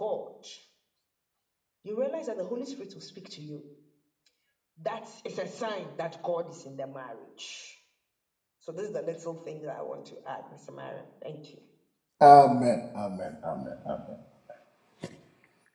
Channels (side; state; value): both; identical; correlation 1.00